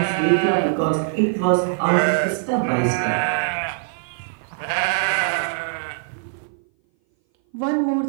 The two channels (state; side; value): silent; left; 59 dB below the other